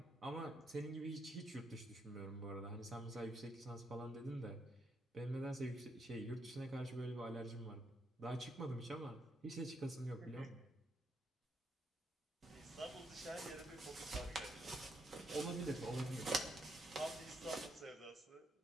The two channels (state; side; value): normal; both; correlation 0.78